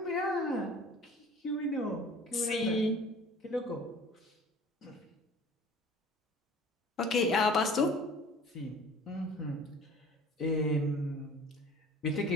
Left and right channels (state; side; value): normal; both; correlation 0.46